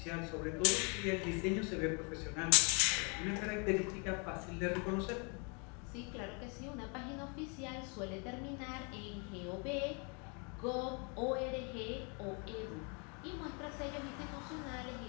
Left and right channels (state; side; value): quieter; right; 35.0 dB